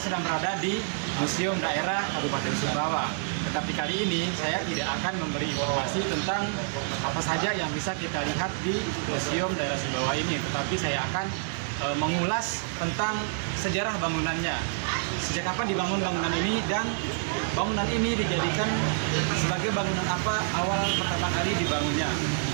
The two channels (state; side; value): silent; left; digital silence